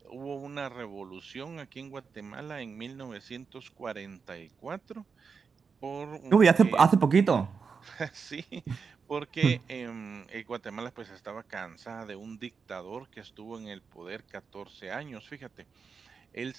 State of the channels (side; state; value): left; quieter; 5.5 dB